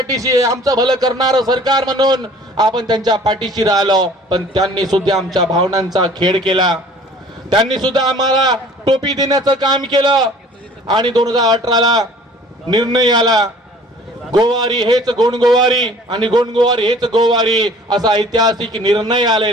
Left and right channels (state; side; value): normal; both; correlation 0.50